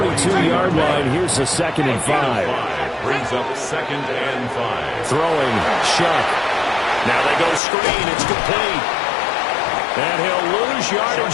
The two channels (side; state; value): right; drops out; at 7.6 s